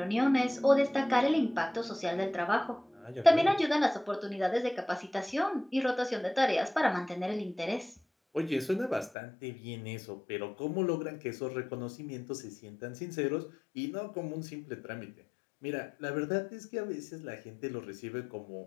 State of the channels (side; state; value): right; drops out; at 9.1 s